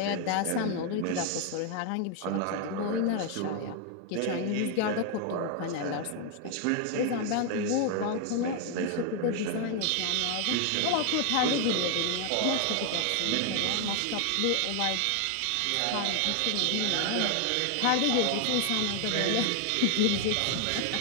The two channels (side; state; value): both; different; correlation 0.00